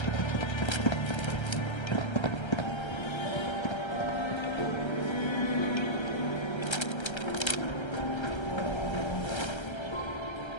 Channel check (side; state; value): right; late; 1.3 ms